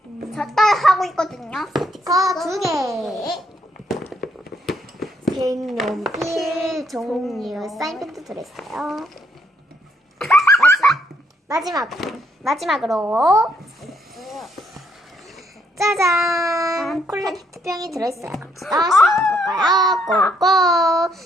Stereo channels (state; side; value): normal; both; correlation 0.73